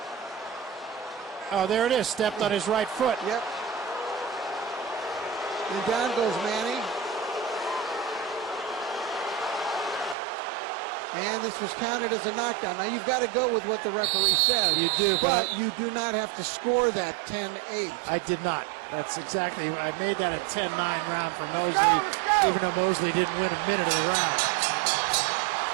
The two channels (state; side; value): drops out; left; at 10.2 s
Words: Oh, there it is. Stepped on his right foot. Yep. And down goes Manny. And this was counted as a knockdown. Now you've got to go with what the referee said. You do, but you do not have to score that 10-8. I did not. That's exactly. I made that a 10-9 round for Mosley, let's go. even though Mosley didn't win a minute of the round.